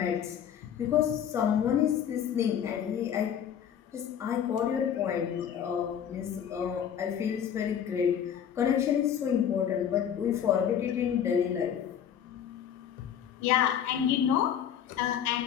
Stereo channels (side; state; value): right; quieter; 9.0 dB